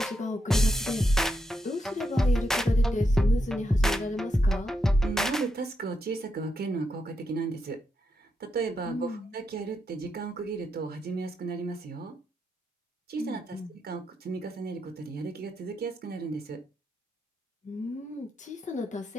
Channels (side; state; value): both; normal; correlation 0.83